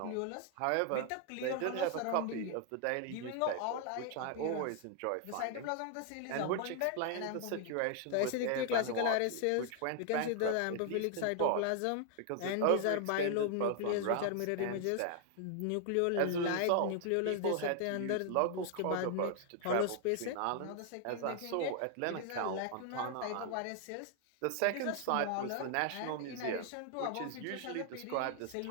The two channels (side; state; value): both; different; correlation 0.00